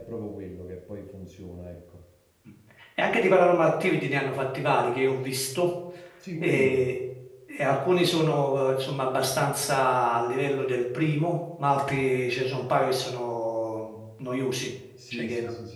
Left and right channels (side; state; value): both; identical; correlation 1.00